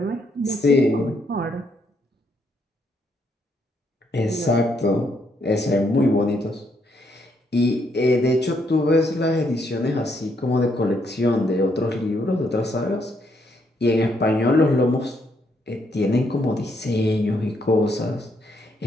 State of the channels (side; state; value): both; normal; correlation 0.74